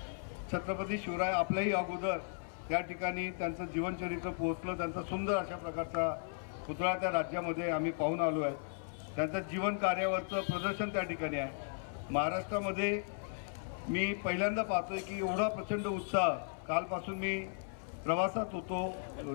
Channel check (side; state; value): right; silent; 54 dB below the other